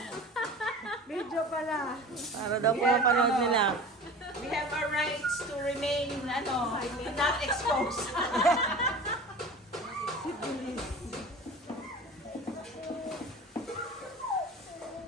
Video pala. Para daw po mapanood nila. We have our rights to remain, not exposed.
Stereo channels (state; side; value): normal; both; correlation 0.37